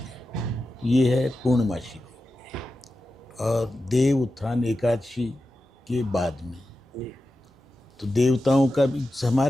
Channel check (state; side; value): normal; both; correlation 0.92